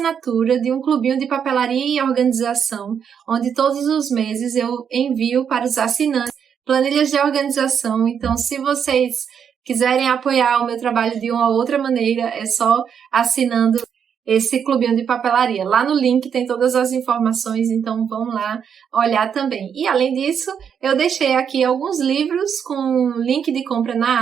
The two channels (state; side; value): quieter; left; 7.6 dB